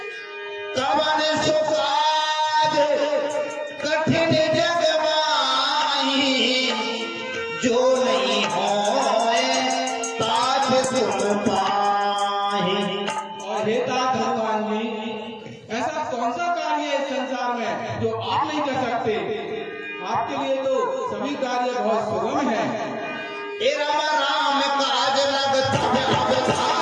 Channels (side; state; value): both; identical; correlation 1.00